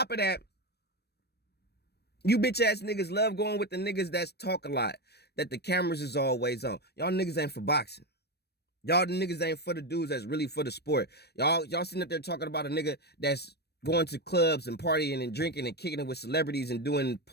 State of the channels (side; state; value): right; late; 0.47 ms